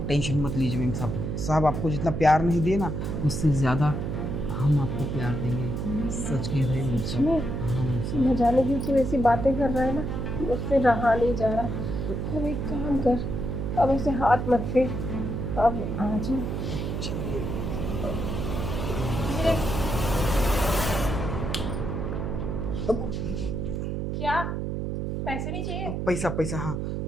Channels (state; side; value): noise; right; hum, 2 dB below the sound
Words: टेंशन मत लीजिए मैम साहब, साहब आपको जितना प्यार नहीं दिए ना, उससे ज़्यादा हम आपको प्यार देंगे। सच कह रहे हैं मैम साहब। हाँ मैम साहब। न जाने क्यों तू ऐसी बातें कर रहा है ना, उससे रहा नहीं जा रहा। अब एक काम कर, अब ऐसे हाथ मत फेर, अब आ जा। क्या पैसे नहीं चाहिए? पैसा पैसा, हाँ